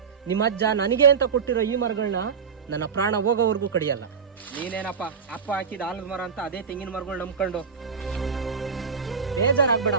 ನಿಮ್ಮ ಅಜ್ಜ ನನಗೆ ಅಂತ ಕೊಟ್ಟಿರೋ ಈ ಮರಗಳನ್ನ ನನ್ನ ಪ್ರಾಣ ಹೋಗೋವರೆಗೂ ಕಡಿಯಲ್ಲ. ನೀನೇನಪ್ಪ ಅಪ್ಪ ಹಾಕಿದ ಆಲದ ಮರ ಅಂತ ಅದೇ ತೆಂಗಿನ ಮರಗಳು ನಂಬ್ಕೊಂಡು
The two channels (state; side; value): quieter; left; 6.2 dB